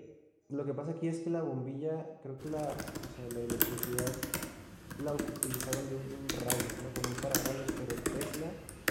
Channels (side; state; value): both; identical; correlation 1.00